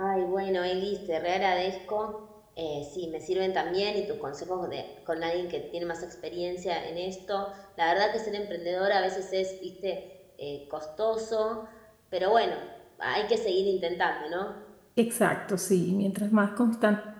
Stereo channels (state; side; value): identical; both; correlation 1.00